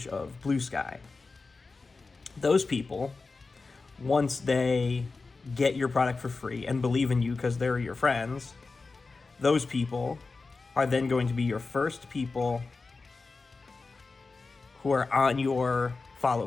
of Blue Sky. Those people, once they get your product for free and believe in you because they're your friends, those people are then going to be your first people who are on your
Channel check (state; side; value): quieter; right; 4.0 dB